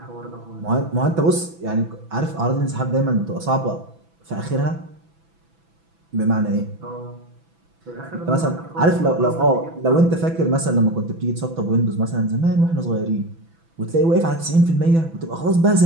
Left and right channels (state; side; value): late; left; 6.0 ms